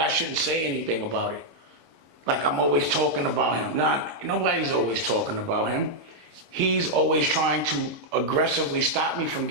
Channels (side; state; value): left; late; 26 ms